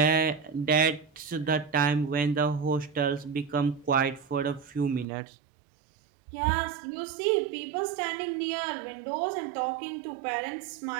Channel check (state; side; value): drops out; left; at 5.1 s